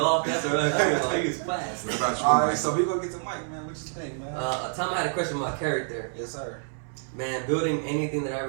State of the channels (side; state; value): left; silent; 60 dB below the other